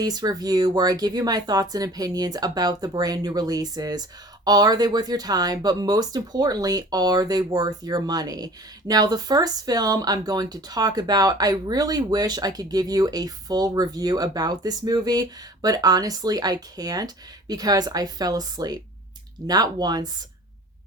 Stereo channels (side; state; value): both; normal; correlation 0.45